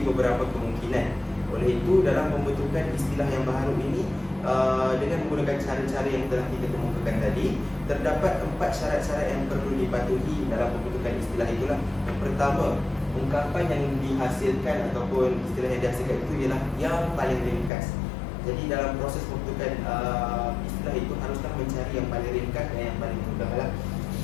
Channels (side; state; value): right; drops out; at 17.7 s